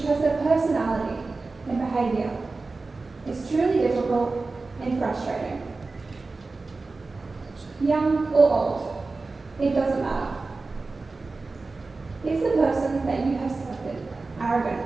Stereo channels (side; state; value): left; quieter; 3.7 dB